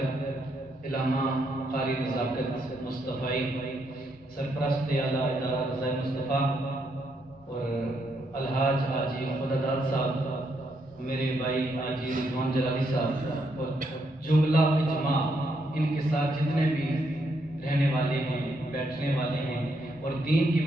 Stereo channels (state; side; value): normal; both; correlation 0.77